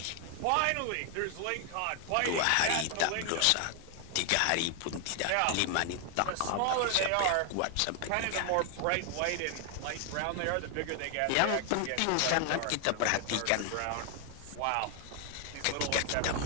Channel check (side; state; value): both; different; correlation 0.00